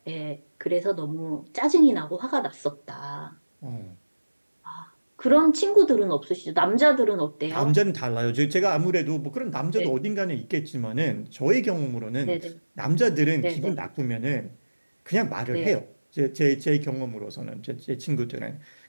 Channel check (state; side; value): inverted; both; correlation -1.00